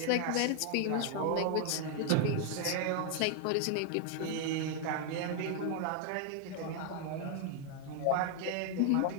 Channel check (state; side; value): different; both; correlation 0.01